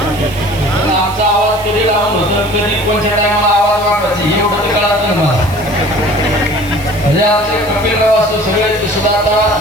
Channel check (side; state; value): right; noise; hiss, 18 dB below the sound